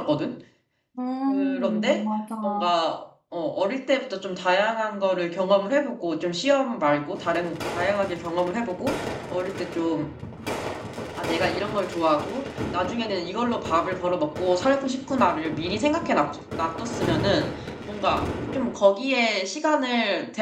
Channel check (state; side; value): identical; both; correlation 1.00